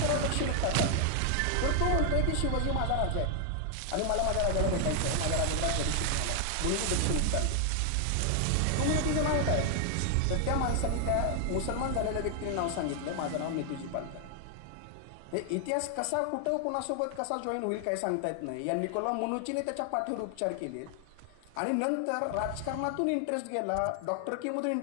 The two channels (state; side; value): different; both; correlation 0.00